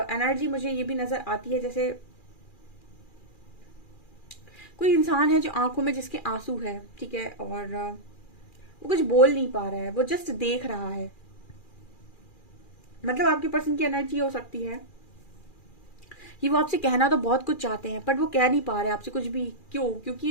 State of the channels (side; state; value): right; late; 2.4 ms